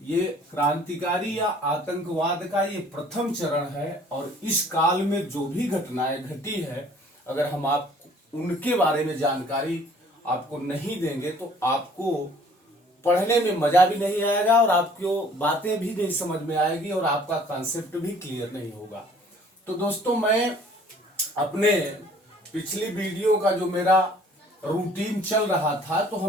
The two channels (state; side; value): normal; both; correlation 0.55